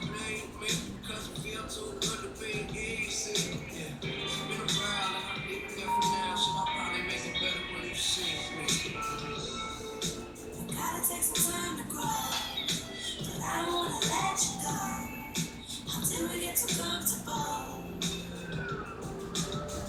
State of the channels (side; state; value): both; identical; correlation 1.00